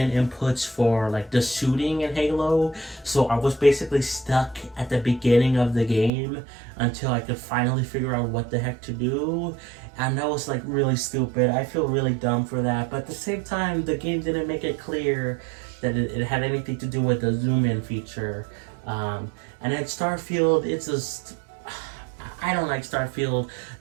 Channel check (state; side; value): drops out; left; at 6.1 s